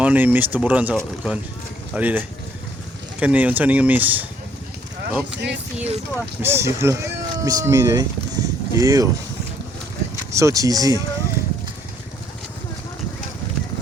ni miss tuburan sa kon. Ali deh. Kan ni unsa ni miss. Up. Miss you lah. Miss me deh. Ew. So cheesy.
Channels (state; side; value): normal; both; correlation 0.65